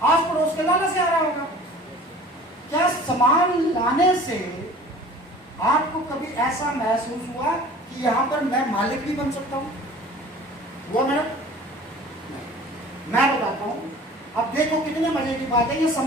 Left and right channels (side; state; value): both; normal; correlation 0.45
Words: आस पड़ोस के लाला से आ रहा होगा। क्या सामान लाने से आपको कभी ऐसा महसूस हुआ कि यहाँ पर मैं मालिक भी बन सकता हूँ? वो मैडम मैं बताता हूँ। अब देखो कितने मजे की बात है। ये